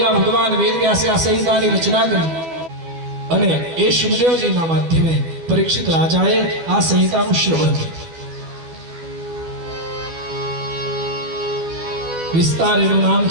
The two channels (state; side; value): late; left; 12 ms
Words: ભગવાન વેદ વ્યાસે આ સંહિતાની રચના કરી અને એ શુભદેવજીના માધ્યમે પરીક્ષિત રાજાએ આ સંહિતાનું શ્રવણ કર્યું. વિસ્તાર એનું નામ